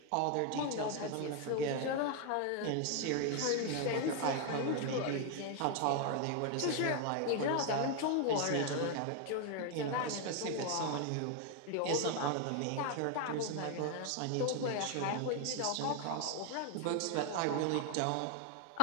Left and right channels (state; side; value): different; both; correlation 0.01